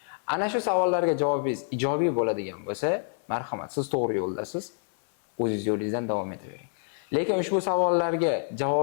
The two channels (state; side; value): silent; right; 60 dB below the other